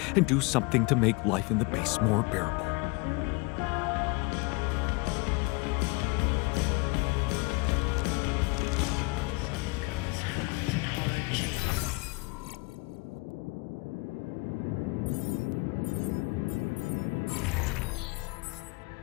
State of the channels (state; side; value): quieter; right; 27.9 dB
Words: and do something to make life in the base more bearable.